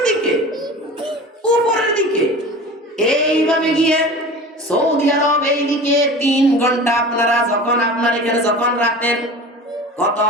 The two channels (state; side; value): normal; both; correlation 0.36